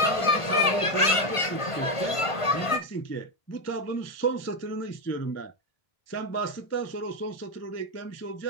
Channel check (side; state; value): right; late; 1.5 ms